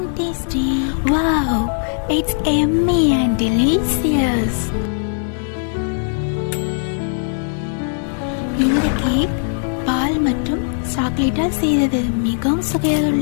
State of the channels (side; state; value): right; silent; 66 dB below the other